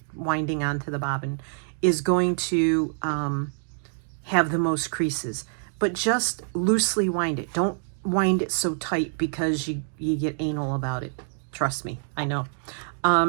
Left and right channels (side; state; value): left; silent; digital silence